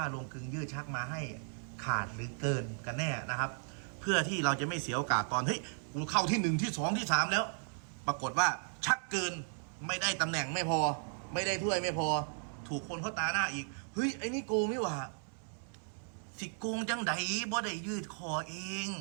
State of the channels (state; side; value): silent; left; 54 dB below the other